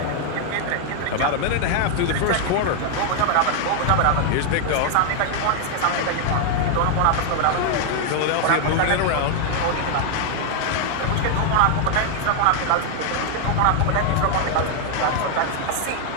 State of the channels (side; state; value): both; different; correlation 0.00